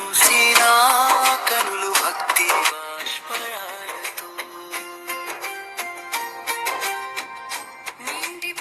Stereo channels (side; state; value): both; identical; correlation 1.00